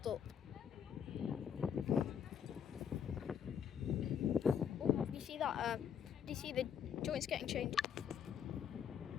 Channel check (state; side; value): quieter; right; 8.1 dB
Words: up. Oh, do you see that? Do you see the joints getting changed?